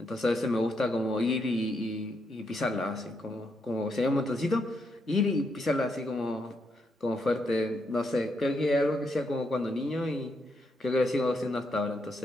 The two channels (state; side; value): normal; both; correlation 0.79